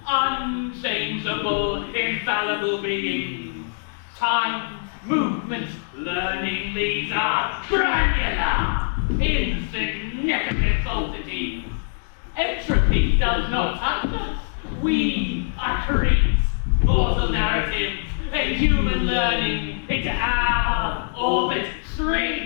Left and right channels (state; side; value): silent; right; digital silence